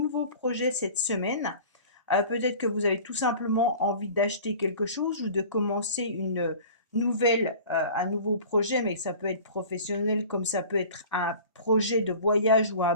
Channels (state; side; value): inverted; both; correlation -0.42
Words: projets cette semaine. Peut-être que vous avez tout simplement envie d'acheter quelque chose ou de commencer un nouveau projet, mais ça peut être professionnel comme ça peut être un projet de voyage ou un